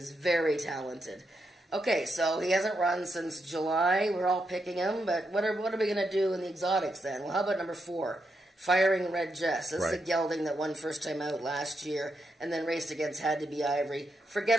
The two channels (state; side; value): normal; both; correlation 0.83